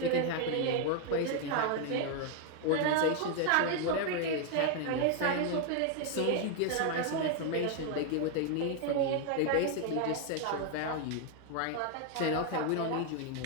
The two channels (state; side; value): different; both; correlation 0.00